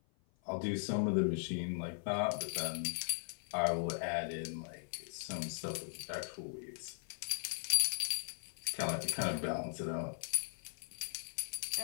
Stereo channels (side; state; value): right; silent; 52 dB below the other